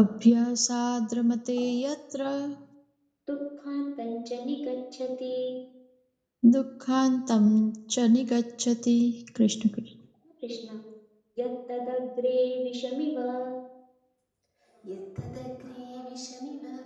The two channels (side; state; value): both; identical; correlation 1.00